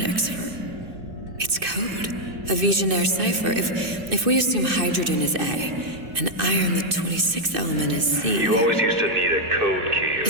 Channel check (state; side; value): late; left; 2.6 ms